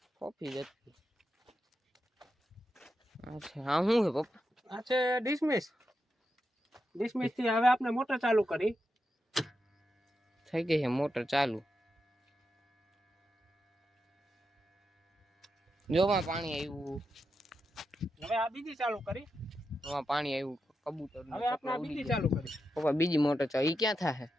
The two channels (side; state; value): both; normal; correlation 0.87